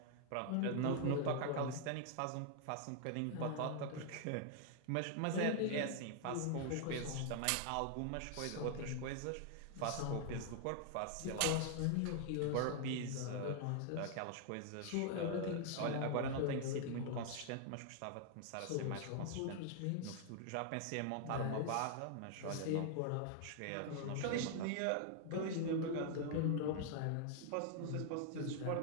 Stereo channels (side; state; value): both; different; correlation 0.00